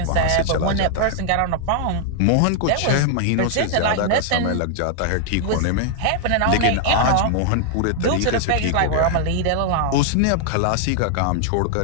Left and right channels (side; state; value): both; different; correlation 0.00